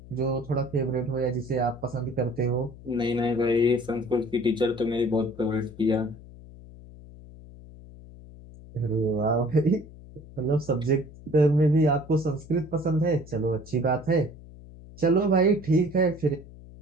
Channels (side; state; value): left; noise; hum, 18 dB below the sound